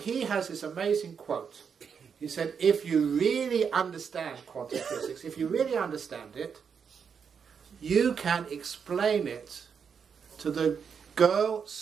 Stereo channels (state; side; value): quieter; left; 6.6 dB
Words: has this amazing quote. He said, if you really understand quantum physics, if you really understand it, you can explain it to the girl